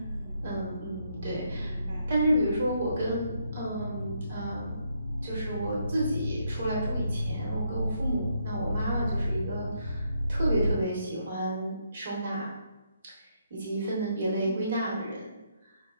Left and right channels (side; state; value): both; inverted; correlation -0.75